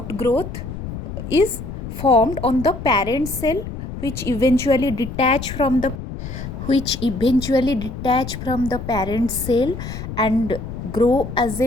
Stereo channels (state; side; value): noise; left; rumble, 8 dB below the sound